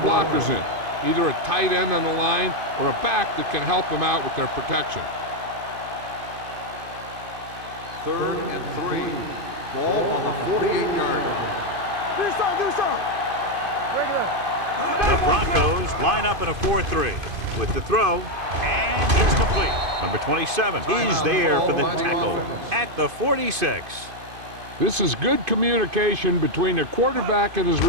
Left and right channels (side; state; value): left; late; 2.5 ms